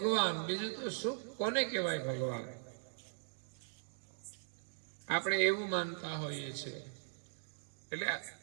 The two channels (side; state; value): left; silent; digital silence